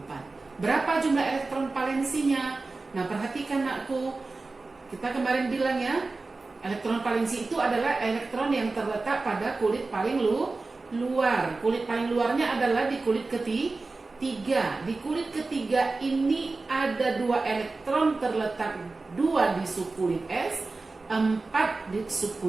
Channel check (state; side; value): quieter; left; 3.6 dB